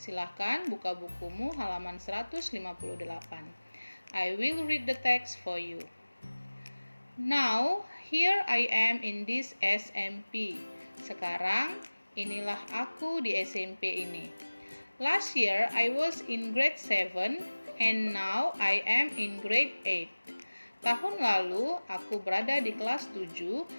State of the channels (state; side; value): inverted; both; correlation -1.00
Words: buka bukumu halaman 158. I will read the text for you. Now, here I am in this SMP. Sekarang, inilah aku di SMP ini. Last year, I was in grade 7 and now I am in grade 8. Tahun lalu, aku berada di kelas 7